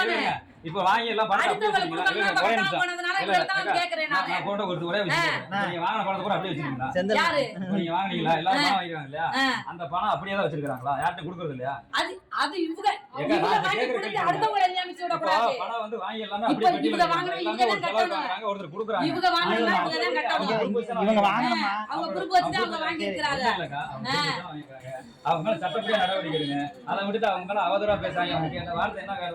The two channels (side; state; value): both; identical; correlation 1.00